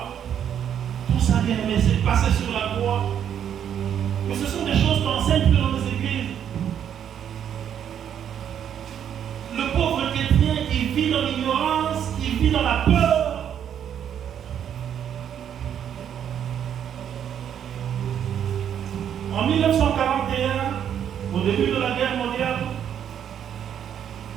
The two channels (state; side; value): quieter; left; 9.2 dB